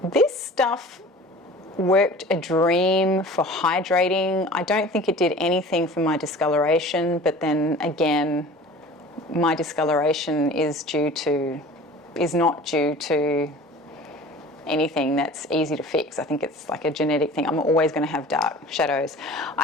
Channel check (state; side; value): normal; both; correlation 0.42